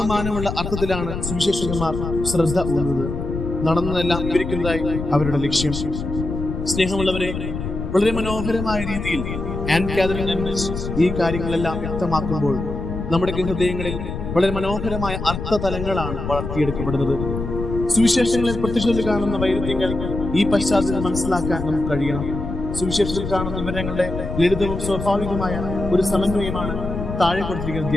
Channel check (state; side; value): noise; left; rumble, 6 dB below the sound